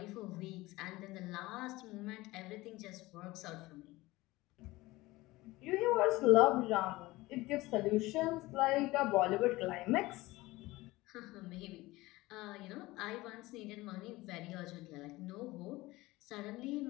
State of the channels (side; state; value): right; quieter; 19.7 dB